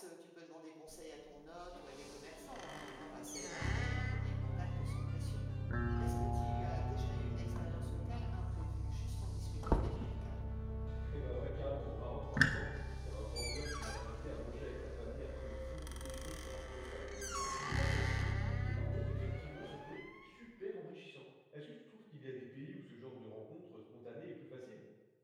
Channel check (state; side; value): identical; both; correlation 1.00